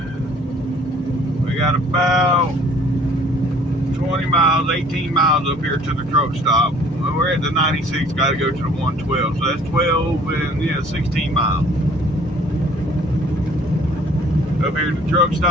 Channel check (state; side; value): normal; both; correlation 0.55